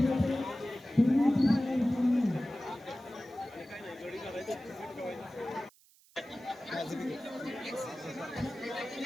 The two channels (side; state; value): right; noise; hiss, 29 dB below the sound